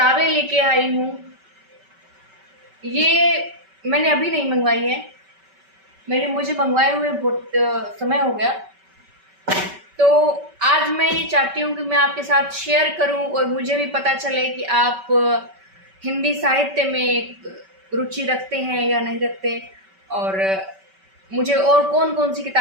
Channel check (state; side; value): late; left; 5.2 ms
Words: लेके आई हूँ। ये मैंने अभी नहीं मंगवाई है, मुझे मंगवाए हुए बहुत समय हो गया। तो आज मैं ये चाहती हूँ कि मैं आपके साथ शेयर करूँ और मुझे भी पता चले कि आप हिंदी साहित्य में रुचि रखते हैं या नहीं रखते, और मुझे और कौन-कौन सी